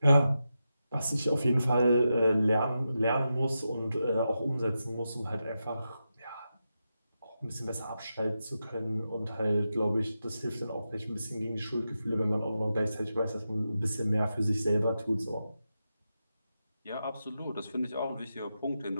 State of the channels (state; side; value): inverted; both; correlation -0.89